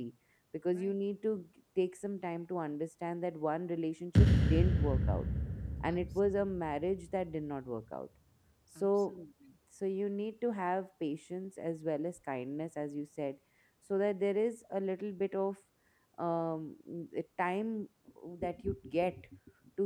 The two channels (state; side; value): identical; both; correlation 1.00